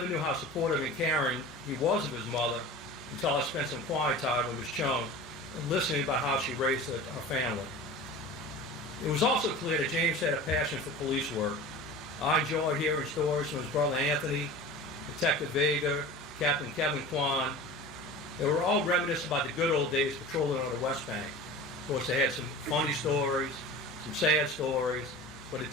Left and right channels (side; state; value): both; normal; correlation 0.36